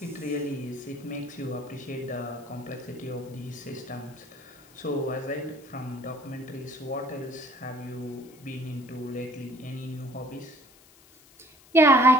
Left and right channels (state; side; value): noise; left; hiss, 25 dB below the sound